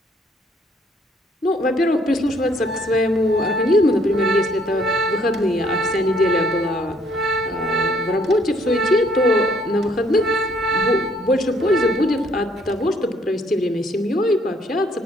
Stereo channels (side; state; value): both; normal; correlation 0.65